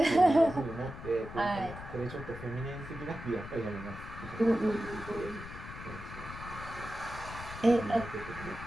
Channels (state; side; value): noise; left; rumble, 12 dB below the sound